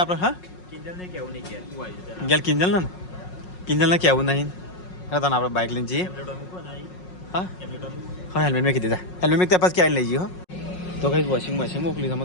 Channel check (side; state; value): right; late; 5.5 ms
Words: હા કિંજલને કેવું નહીં કે તું આવી જા ગેલ કિંજલને કેવું નહીં હા તને આપણે બાઇક લઈને જઈએ ટેમ્પલેટ મૂકો ને હા ટેમ્પલેટ હા હેલ્મેટ મેં કીધી હેલ્મેટ મેં ત્યાં ક્યાં લઈ જઈએ હો તો કઈ વોશિંગ મશીન મોકલી